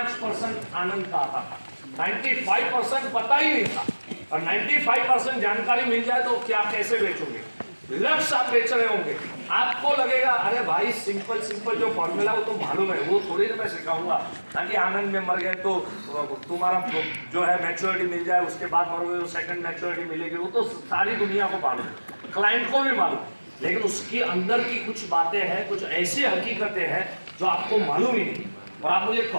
आनंद का आता था, 95% पता ही नहीं था। और 95% जानकारी मिल जाए तो क्या कैसे बेचोगे? लक्ष्य आप बेच रहे होंगे, आपको लगेगा अरे भाई सिंपल जो फॉर्मूला वो तो मालूम है, वो थोड़ी ना मैं सिखाऊंगा, ताकि आनंद में मर गए तो तुम्हारा जो है मैच्योरिटी मिल जाए, उसके बाद मरोगे तो सेकंड मैच्योरिटी मिलेगी, वो तो सारी दुनिया को मालूम है, क्लाइंट को भी मालूम। लेकिन उसके अंदर की कुछ बातें हैं, कुछ ऐसी हकीकतें हैं जो आपको मालूम ही नहीं। और आप मुझे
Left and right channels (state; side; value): inverted; both; correlation -1.00